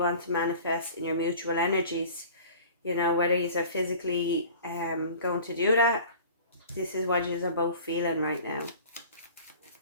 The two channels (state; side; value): inverted; both; correlation -0.43